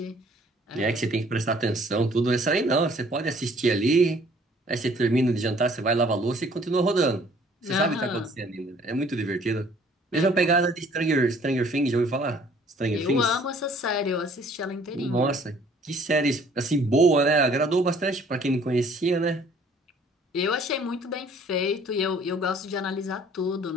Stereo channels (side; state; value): both; normal; correlation 0.57